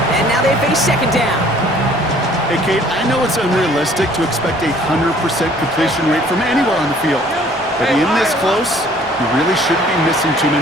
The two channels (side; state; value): both; normal; correlation 0.56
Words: And now they face second down. Hey, Kate, I know it's unrealistic to expect a 100% completion rate from anywhere on the field. But in this close, you really shouldn't be missing too